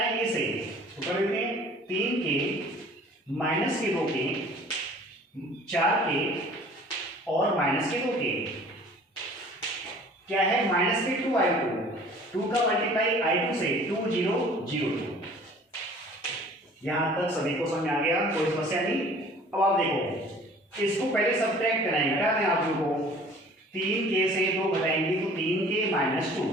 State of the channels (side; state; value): both; normal; correlation 0.49